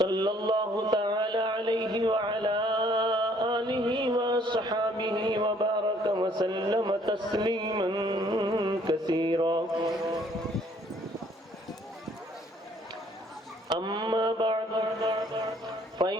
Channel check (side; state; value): both; normal; correlation 0.62